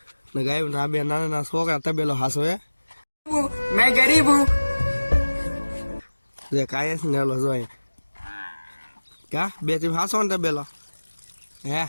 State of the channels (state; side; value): inverted; both; correlation -1.00